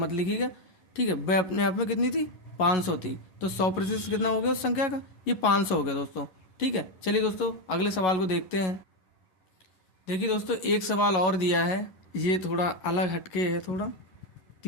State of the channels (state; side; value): late; right; 11 ms